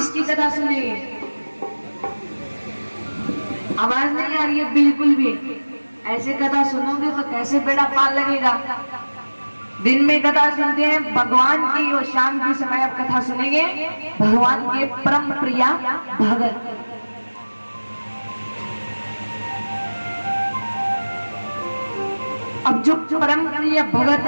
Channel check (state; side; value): inverted; both; correlation -1.00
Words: कथा सुनेंगे? आवाज नहीं आ रही है बिल्कुल भी। ऐसे कथा सुनोगे तो कैसे बेड़ा पार लगेगा? दिन में कथा सुनते हैं भगवान की और शाम के समय आप कथा सुनेंगे भगवान के परम प्रिया भगत। अब जो परम प्रिय भगत